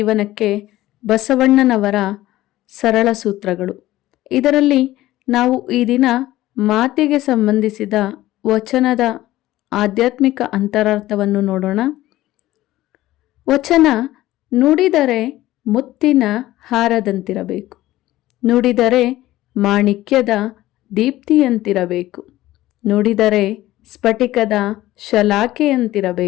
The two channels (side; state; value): right; quieter; 15.9 dB